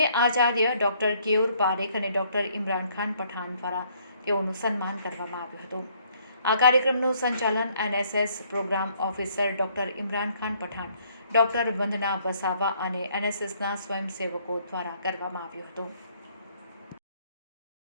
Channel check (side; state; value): both; inverted; correlation -0.65